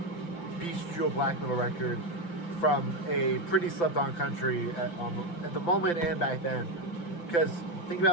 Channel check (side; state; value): right; late; 5.9 ms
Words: beastial black metal record from a pretty slept-on country at the moment and back then. Because think about it